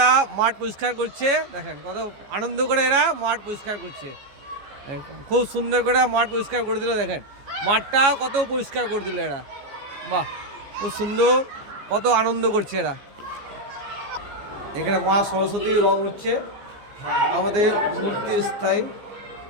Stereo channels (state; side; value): late; left; 15 ms